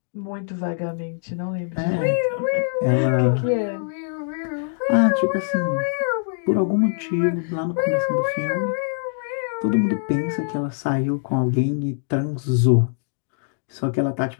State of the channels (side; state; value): right; silent; 63 dB below the other